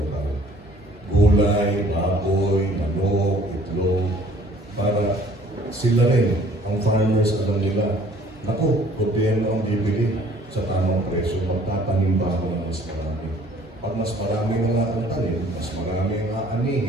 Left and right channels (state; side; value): normal; both; correlation 0.55